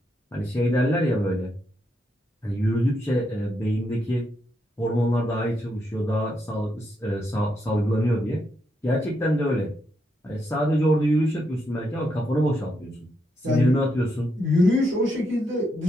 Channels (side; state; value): both; normal; correlation 0.80